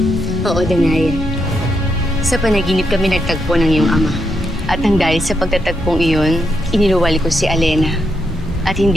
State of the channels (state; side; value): normal; both; correlation 0.81